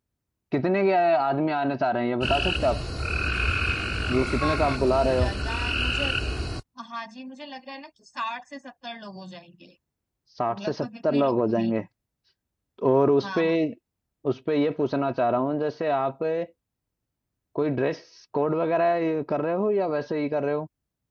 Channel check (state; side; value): identical; both; correlation 1.00